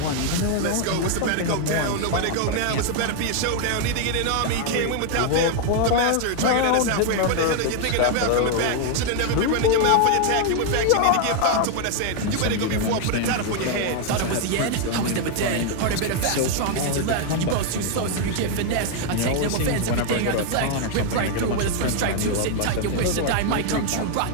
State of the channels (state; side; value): different; both; correlation 0.00